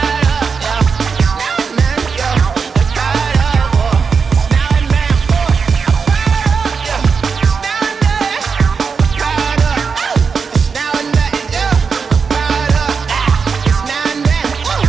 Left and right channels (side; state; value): left; quieter; 5.5 dB